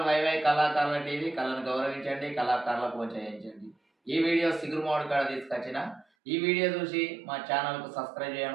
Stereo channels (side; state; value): left; drops out; at 6.1 s